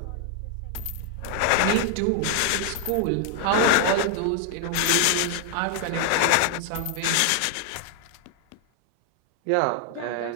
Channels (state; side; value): different; both; correlation 0.00